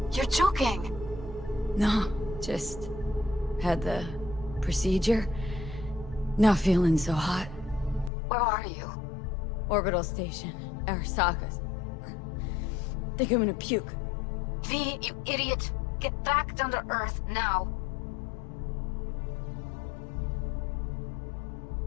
You're joking. No, just had the procedure. Not feeling so hot. Where are you? Orbital station. Arasaka's. Think I'm gonna puke. V, you idiot. Get back down to Earth now.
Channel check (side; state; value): right; drops out; at 8.1 s